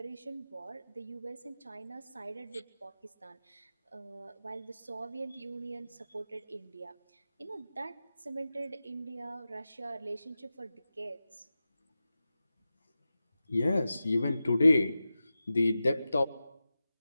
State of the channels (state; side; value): inverted; both; correlation -0.94